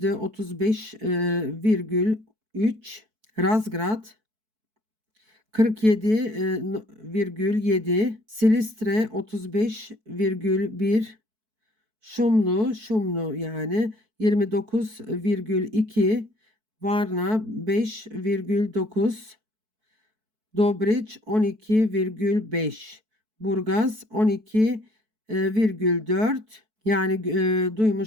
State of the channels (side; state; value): left; late; 4.6 ms